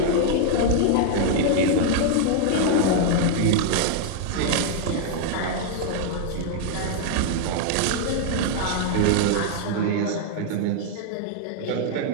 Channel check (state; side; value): different; both; correlation -0.01